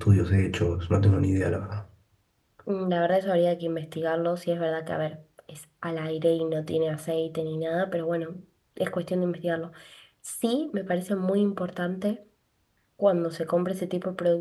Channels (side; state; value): both; identical; correlation 1.00